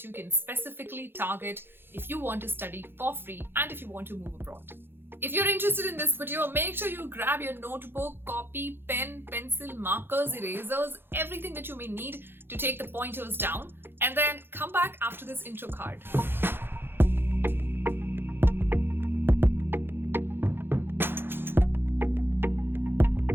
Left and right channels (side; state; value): left; late; 0.10 ms